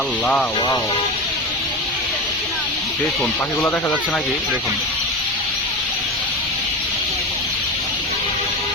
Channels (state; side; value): normal; both; correlation 0.23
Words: আল্লাহ, ওয়াও! দেখুন পাখিগুলো দেখা যাচ্ছে নাকি? দেখুন,